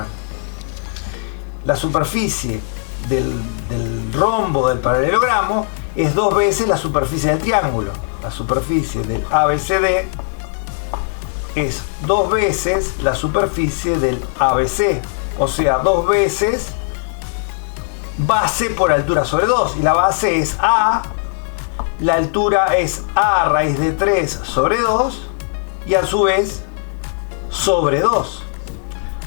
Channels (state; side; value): silent; right; digital silence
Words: La superficie del rombo del paralelogramo es 2 veces la superficie del triángulo. La superficie del ABCD es 2 veces la superficie del ABC, o sea, 2 veces base por altura sobre 2, y la base es A, la altura es A raíz de 3 sobre 2, y a su vez sobre 2,